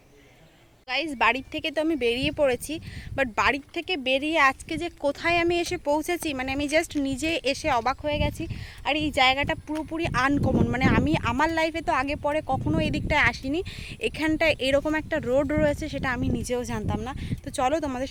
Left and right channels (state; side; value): identical; both; correlation 1.00